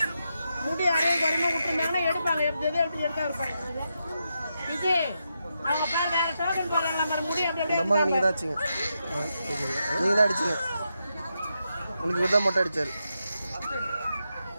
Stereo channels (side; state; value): both; inverted; correlation -0.85